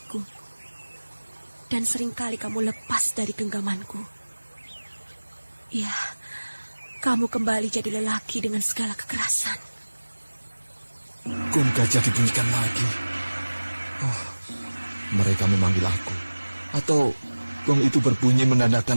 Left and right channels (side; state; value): both; inverted; correlation -1.00